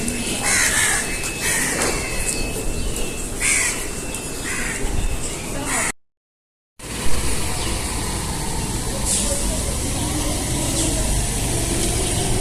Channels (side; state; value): both; identical; correlation 1.00